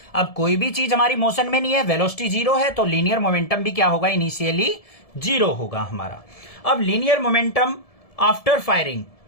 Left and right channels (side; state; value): right; late; 1.7 ms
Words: अब कोई भी चीज हमारी मोशन में नहीं है, वेलोसिटी 0 है, तो लीनियर मोमेंटम भी क्या होगा, इनिशियली 0 होगा हमारा। अब linear momentum after firing,